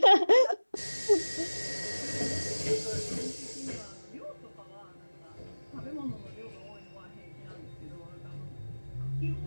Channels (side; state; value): both; inverted; correlation -1.00